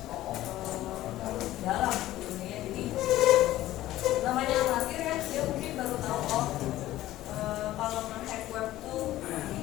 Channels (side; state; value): right; quieter; 15.0 dB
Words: dalam gitu ya. Jadi namanya amatir ya, dia mungkin baru tahu kalau nge-hack web tuh